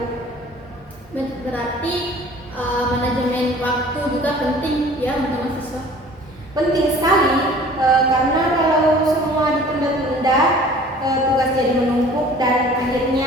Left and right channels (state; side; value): normal; both; correlation 0.48